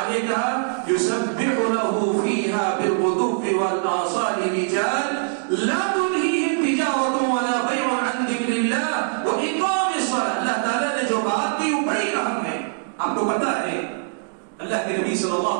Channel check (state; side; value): silent; left; digital silence